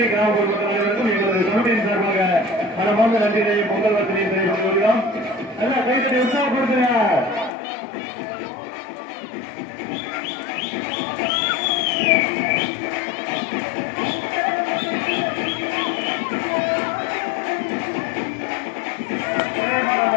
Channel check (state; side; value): drops out; right; at 7.5 s